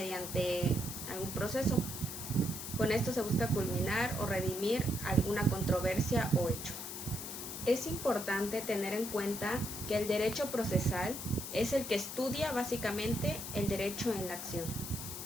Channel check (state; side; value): noise; left; hiss, 7 dB below the sound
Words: algún proceso. Con esto se busca culminar o redimir alguna controversia o hecho. Es importante tener en cuenta que el derecho procesal es el que estudia básicamente el derecho en la acción.